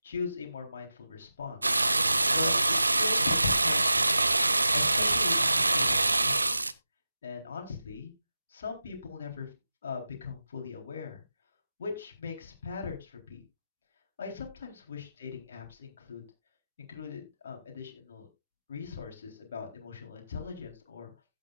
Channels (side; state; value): both; inverted; correlation -0.94